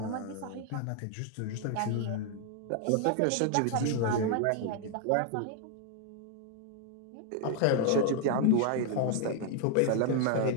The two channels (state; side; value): different; both; correlation 0.00